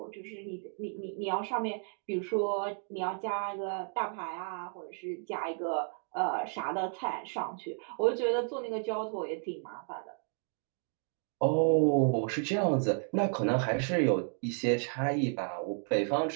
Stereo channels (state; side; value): silent; left; 56 dB below the other